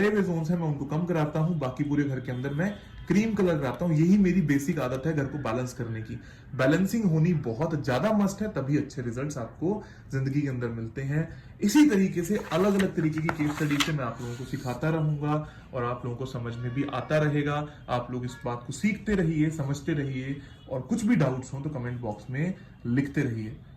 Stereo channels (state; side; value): identical; both; correlation 1.00